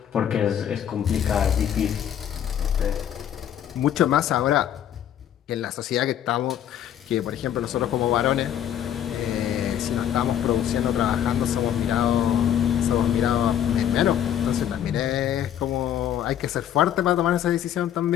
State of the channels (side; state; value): right; quieter; 10.1 dB